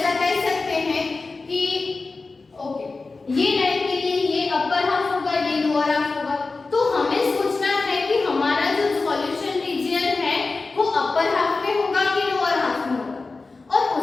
कह सकते हैं कि ओके, ये लाइन के लिए ये अपर हाफ होगा, ये लोअर हाफ होगा। तो हमें सोचना है कि हमारा जो सॉल्यूशन रीजन है वो अपर हाफ में होगा कि लोअर हाफ में होगा, और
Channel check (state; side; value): quieter; right; 3.8 dB